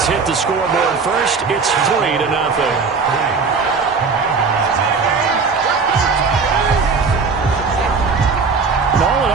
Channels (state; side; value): quieter; left; 4.9 dB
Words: hit the scoreboard first. It's 3-0. All in